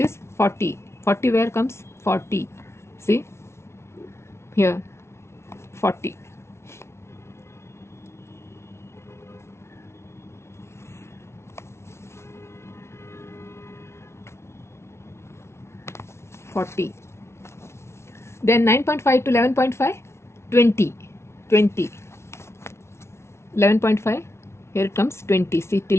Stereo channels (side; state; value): right; late; 0.13 ms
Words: 40. 40 where comes? 40. See? Here. 40. Then 9.5 to 11.5, 20. 20. 11.5, here it comes 20. See